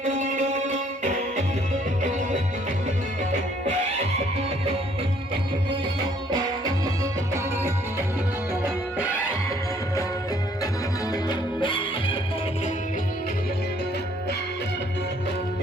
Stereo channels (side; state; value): both; normal; correlation 0.63